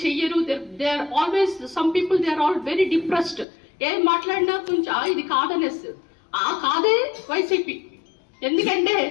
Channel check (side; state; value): right; drops out; at 3.5 s